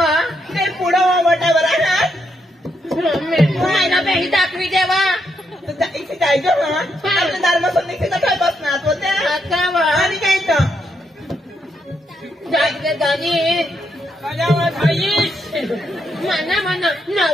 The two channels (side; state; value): both; normal; correlation 0.79